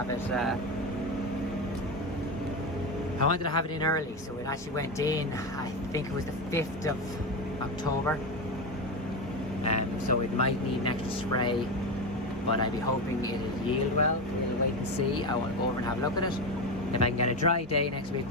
it in early, so it actually went in, I think it was the 5th of October. So it might need an extra spray, but I'd be hoping it'll yield well. We'll wait and see. I want to go over and have a look at it. If I can get a dry day next week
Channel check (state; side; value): normal; both; correlation 0.17